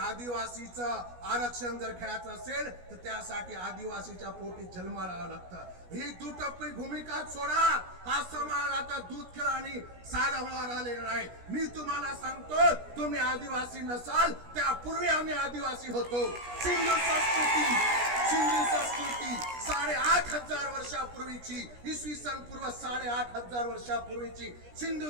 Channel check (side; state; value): left; late; 17 ms